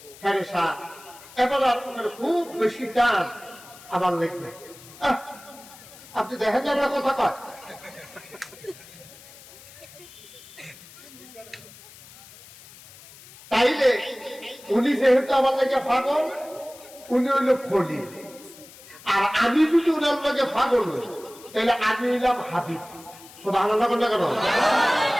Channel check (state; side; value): noise; left; hiss, 20 dB below the sound